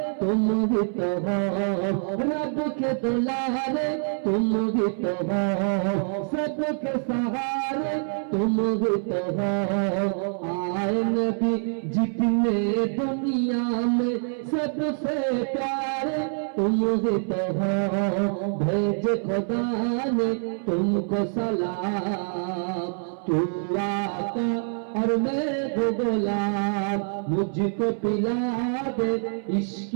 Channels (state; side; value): silent; left; 61 dB below the other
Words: तुम भी तो हो, रब के दुलारे तुम भी तो हो, सबके सहारे तुम भी तो हो। आए नबी जितने दुनिया में सबसे प्यारे तुम ही तो हो, भेज खुदा ने तुमको सलाम, तू आका और मैं हूँ गुलाम, मुझको पिला दे इश्क